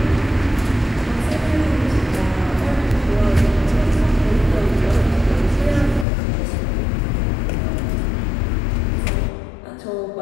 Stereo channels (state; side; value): drops out; right; at 6.1 s